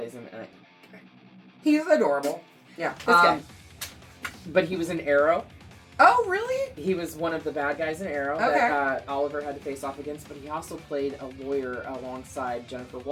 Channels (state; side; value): identical; both; correlation 1.00